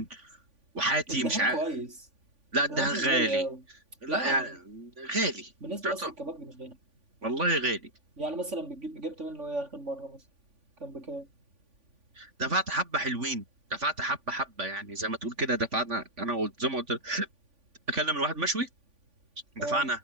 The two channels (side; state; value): left; late; 3.5 ms